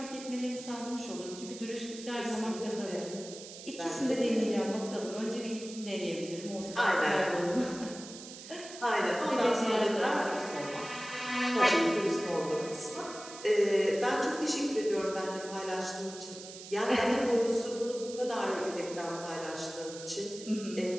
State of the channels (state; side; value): noise; right; hiss, 13 dB below the sound